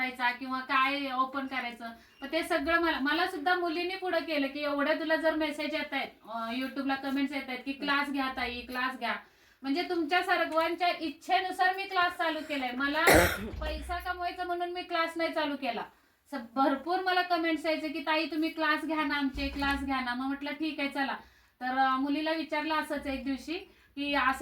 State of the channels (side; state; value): both; identical; correlation 1.00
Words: किंवा काय ओपन करायचं. पण ते सगळं मला सुद्धा मुलींनी पुढे केलं की एवढ्या तुला जर मेसेज येत आहेत, युट्यूबला कमेंट्स येत आहेत की क्लास घ्या ताई क्लास घ्या. म्हणजे तुमच्या सर्वांच्या इच्छेनुसार मी क्लास चालू केलाय. मला पैसा कमवायचा म्हणून मी क्लास नाही चालू केला. भरपूर मला कमेंट्स यायचे की ताई तुम्ही क्लास घ्या ना, आमचे क्लास घ्या ना. मग म्हटलं ठीक आहे चला. तर मुलीला विचारलं असंच एक दिवशी की